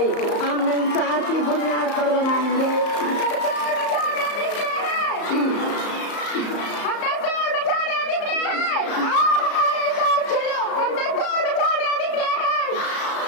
हम इंसाफ की बुनियाद पर बनाएंगे।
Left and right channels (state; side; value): late; right; 34 ms